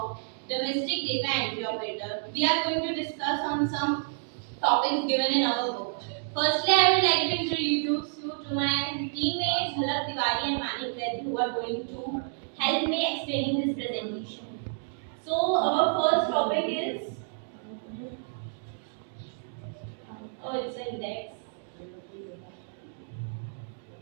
domestic data entry operator. We are going to discuss on some topics given in our book. Firstly, I would like to introduce you to my teammates Jhalak Tiwari and Manik Vaid, who are going to help me explaining this presentation. So our first topic is it's index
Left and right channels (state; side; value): silent; left; digital silence